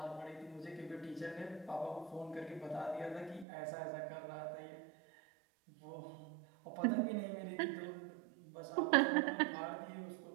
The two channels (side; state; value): left; drops out; at 3.5 s